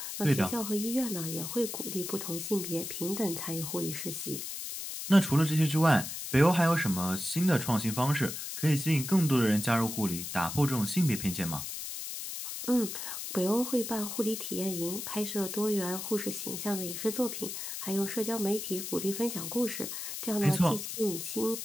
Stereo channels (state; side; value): noise; left; hiss, 6 dB below the sound